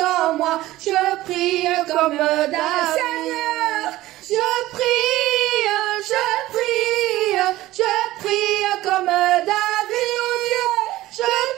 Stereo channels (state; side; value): quieter; left; 16.5 dB